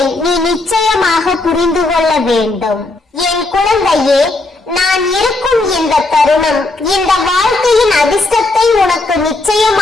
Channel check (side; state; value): right; quieter; 3.1 dB